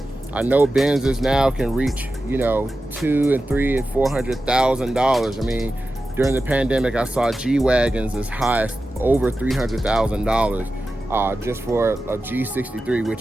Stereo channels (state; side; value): normal; both; correlation 0.93